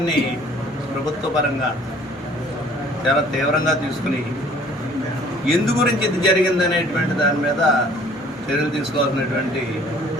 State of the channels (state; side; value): normal; both; correlation 0.55